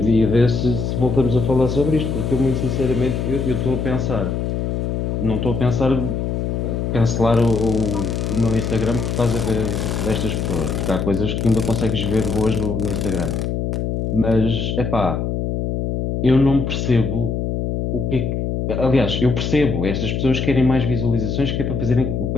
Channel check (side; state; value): left; noise; hum, 1 dB below the sound